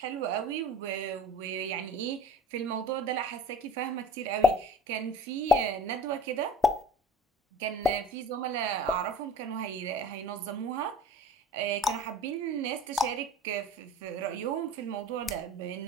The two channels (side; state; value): both; normal; correlation 0.45